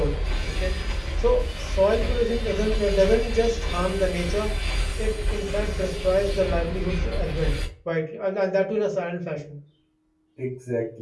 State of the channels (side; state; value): both; identical; correlation 1.00